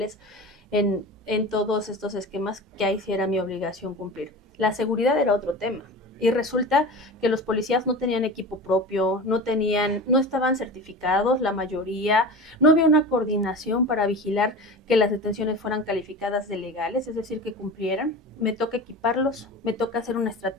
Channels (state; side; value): normal; both; correlation 0.32